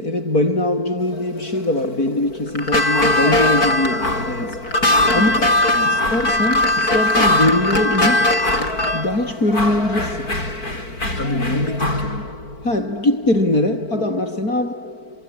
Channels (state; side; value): late; right; 4.5 ms